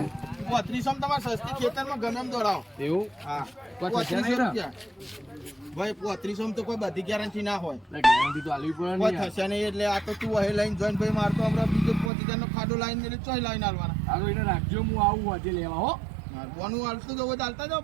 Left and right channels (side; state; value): left; drops out; at 12.1 s